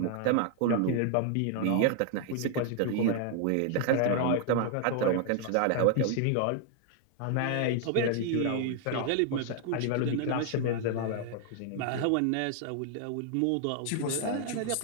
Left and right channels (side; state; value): both; different; correlation 0.00